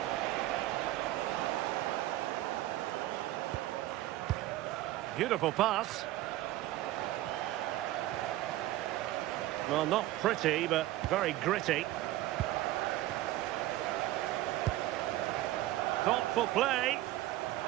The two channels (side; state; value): left; quieter; 15.6 dB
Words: Beautiful pass. Well, not pretty, but very gritty. Thoughtful play.